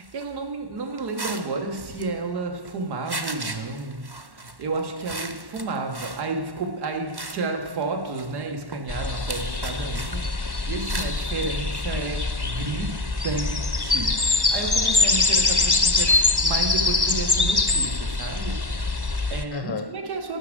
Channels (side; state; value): left; late; 1.1 ms